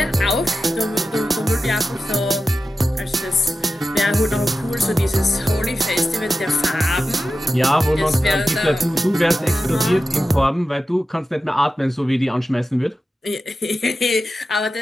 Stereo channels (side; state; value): both; normal; correlation 0.92